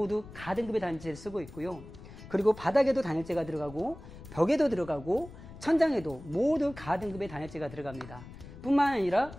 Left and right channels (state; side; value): noise; left; rumble, 16 dB below the sound